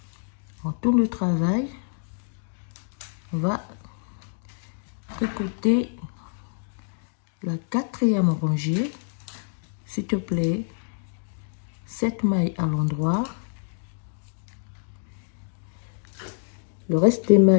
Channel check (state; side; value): silent; right; digital silence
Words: On tourne le travail, on va tricoter la 4e rangée, s'il te plaît, 7 mailles à l'endroit. Le reste des